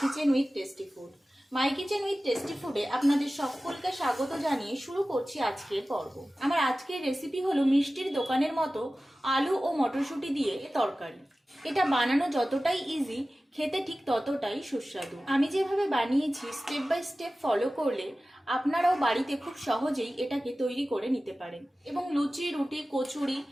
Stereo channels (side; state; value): both; normal; correlation 0.96